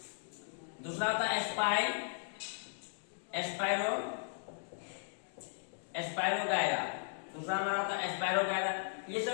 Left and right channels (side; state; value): right; silent; digital silence